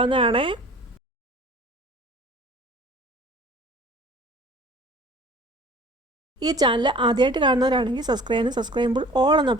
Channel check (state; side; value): normal; both; correlation 0.47